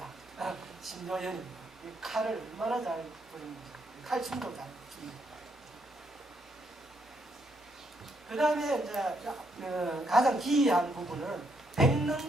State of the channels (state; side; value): normal; both; correlation 0.75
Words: 신묘연입니다. 이 칼을 얼마나 잘 부리는지, 칼춤도 잘 춥니다. 그 다음에 이제 가장 기이한 부분은